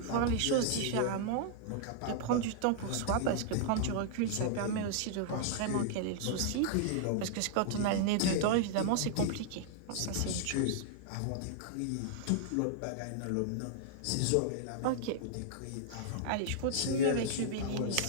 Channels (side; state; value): both; different; correlation -0.01